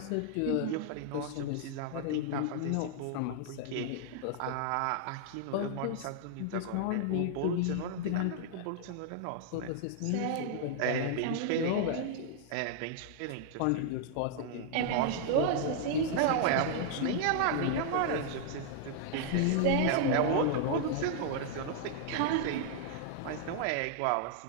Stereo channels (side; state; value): both; different; correlation -0.01